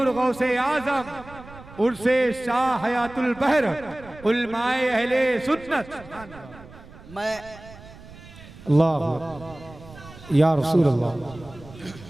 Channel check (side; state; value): right; noise; rumble, 19 dB below the sound